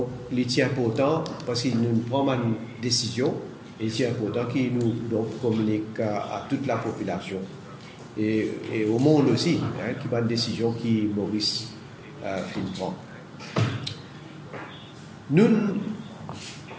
il est important, parce qu'il nous prend une décision, il est important qu'il nous donc, communique à toute la population. Et au monde aussi, qui prend une décision qui Maurice prend. Nous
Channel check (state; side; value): identical; both; correlation 1.00